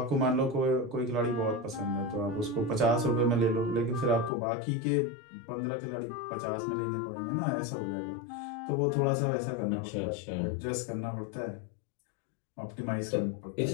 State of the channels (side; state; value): right; drops out; at 4.3 s